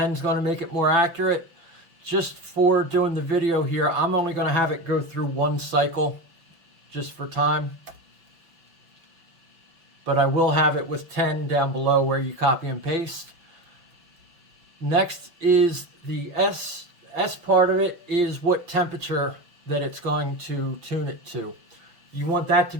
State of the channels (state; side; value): late; left; 5.7 ms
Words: is going to make it more accurate. Just for doing the video here, I'm only going to have it go through one cycle, just for time. But I will have it with 10 down below where you copy and paste. Next is the S. S part of it is what temperature that it's going to tune it to. You want that to